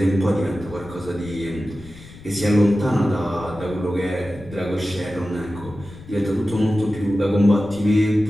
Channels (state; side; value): noise; left; rumble, 18 dB below the sound